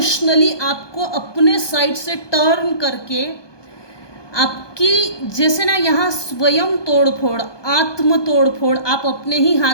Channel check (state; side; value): late; right; 1.2 ms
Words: आपको अपने साइड से टर्न करके आपकी, जैसे ना यहाँ स्वयं तोड़फोड़, आत्म तोड़फोड़, आप अपने ही